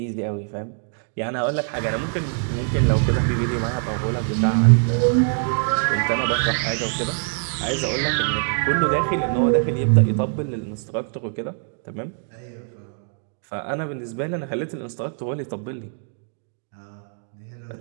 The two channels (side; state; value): left; silent; 59 dB below the other